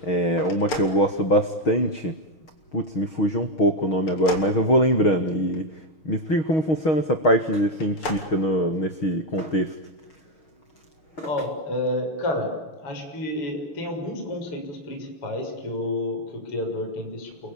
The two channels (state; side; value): late; right; 6.7 ms